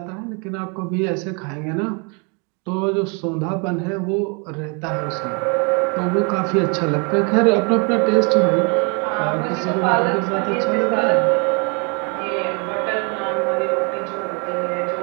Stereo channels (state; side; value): quieter; left; 34.6 dB